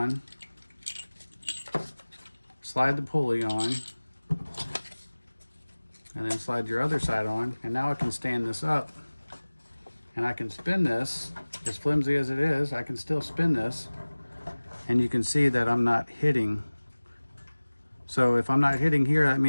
slide the pulley on, and then slide your other side on. And now I can stand this up and I can spin this. As flimsy as it is, I can still spin this, and you can see that I'm not hitting. So if I'm not hitting here, that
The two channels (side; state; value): both; inverted; correlation -1.00